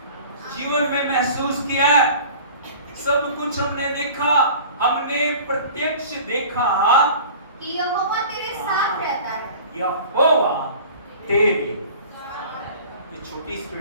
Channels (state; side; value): inverted; both; correlation -0.43